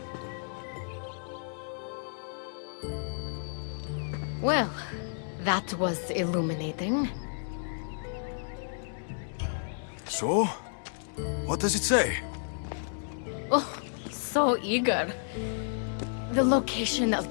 Well, that was illuminating. So? What does it say? Oh, so eager. The location of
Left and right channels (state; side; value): silent; right; digital silence